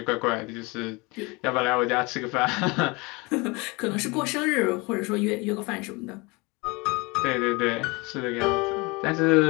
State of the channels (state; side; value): quieter; right; 26.4 dB